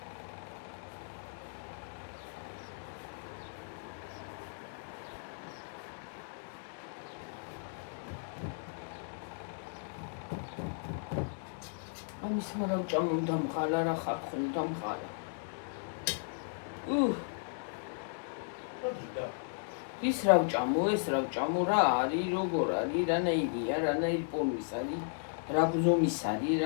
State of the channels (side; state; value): right; silent; 54 dB below the other